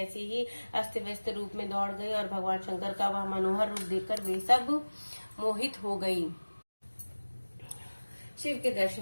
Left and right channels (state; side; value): inverted; both; correlation -1.00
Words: ही अस्त व्यस्त रूप में दौड़ गई और भगवान शंकर का वह मनोहर रूप देखकर वे सब मोहित हो गई। शिव के